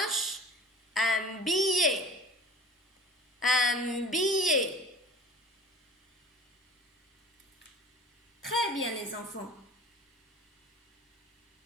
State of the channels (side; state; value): both; normal; correlation 0.42